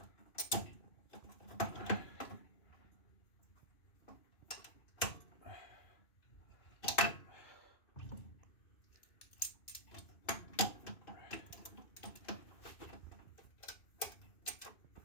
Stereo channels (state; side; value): late; right; 2.5 ms